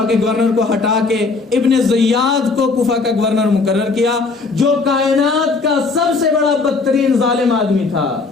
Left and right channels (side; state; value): right; quieter; 4.1 dB